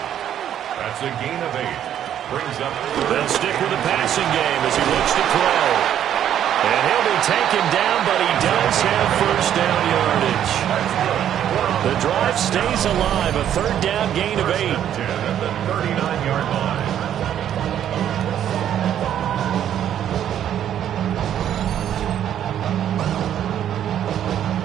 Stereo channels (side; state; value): left; quieter; 10.3 dB